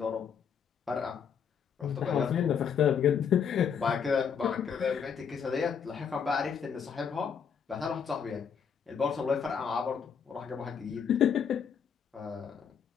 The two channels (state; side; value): quieter; right; 7.1 dB